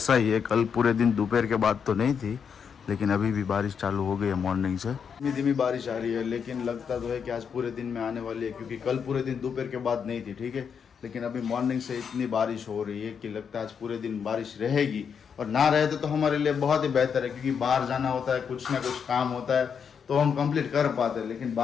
ही है। कल पूरे दिन दोपहर के बाद तो नहीं थी, लेकिन अभी भी बारिश चालू हो गई है मॉर्निंग से। धीमी धीमी बारिश आ रही है, लेकिन लगता तो है कि आज पूरे दिन में आने वाली है, क्योंकि कल पूरे दिन दोपहर के बाद नहीं थी। ठीक है, लेकिन अभी मॉर्निंग से इतनी बारिश हो रही है कि लगता है आज पूरे दिन बारिश रहेगी। और ना रहे तो हमारे लिए बहुत ही बेहतर है, क्योंकि बाहर जाना होता है, कुछ ना कुछ काम होता है तो हम कंप्लीट कर पाते हैं। लेकिन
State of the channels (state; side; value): quieter; right; 6.9 dB